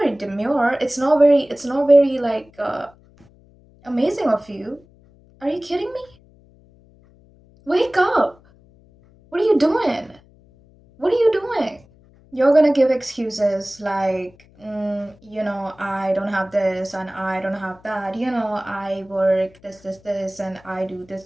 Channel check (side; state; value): left; noise; hum, 28 dB below the sound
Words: very demure. It's not very like Amazing of you. Are you kidding me? Wake up. What are you doing? What are you doing? You're gonna give excuses like, I don't have this and I don't have that. I work this, and I do